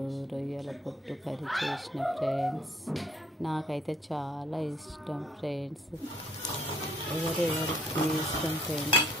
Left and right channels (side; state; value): both; normal; correlation 0.62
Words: రొయ్యల పొట్టు కర్రీ చేసిన ఫ్రెండ్స్. నాకైతే చాలా ఇష్టం ఫ్రెండ్స్. ఎవరెవరికి ఇష్టం ఫ్రెండ్స్